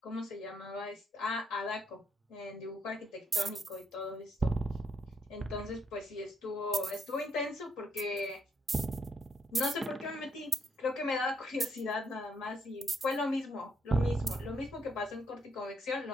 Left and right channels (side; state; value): both; normal; correlation 0.75